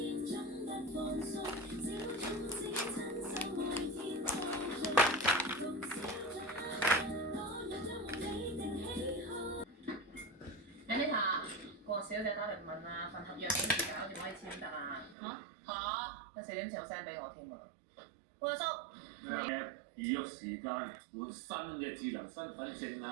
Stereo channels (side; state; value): left; drops out; at 15.2 s